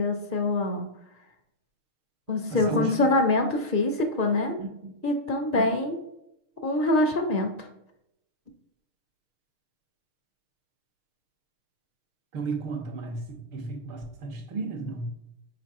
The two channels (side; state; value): left; late; 6.5 ms